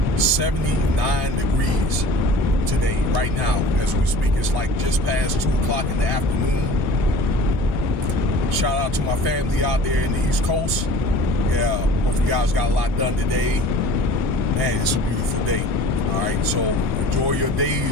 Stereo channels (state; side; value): normal; both; correlation 0.43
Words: 79 degrees today, right now, as we speak. It's like just past 2 o'clock in the afternoon. Shout out to my family out there in the East Coast. Yeah, hope you guys got a lot done today. Man, it's a beautiful day. All right, so enjoy your